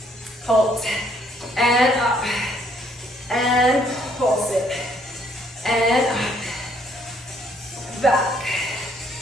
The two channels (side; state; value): both; normal; correlation 0.66